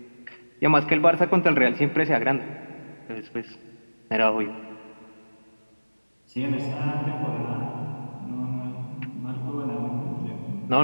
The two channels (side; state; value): both; inverted; correlation -1.00